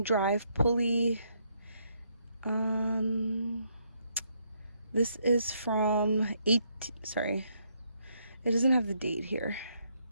drive pulley. This is from it doesn't have the date here,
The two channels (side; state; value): both; inverted; correlation -0.74